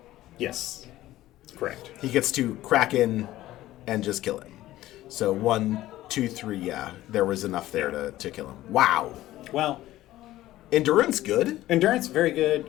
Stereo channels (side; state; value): right; quieter; 15.3 dB